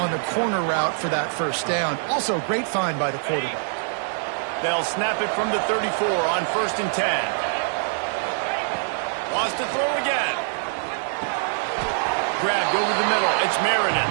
the corner route for that first down. Also, great find by the quarterback. They'll snap it from the 34 on 1st and 10. Wants to throw again. Grabbed over the middle. It's Marion.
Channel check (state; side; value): silent; left; digital silence